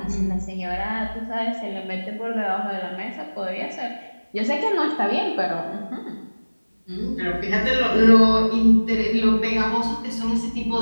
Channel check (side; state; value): both; inverted; correlation -1.00